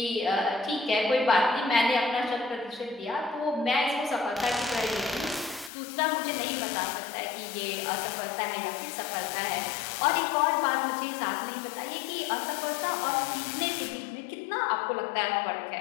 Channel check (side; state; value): right; drops out; at 5.7 s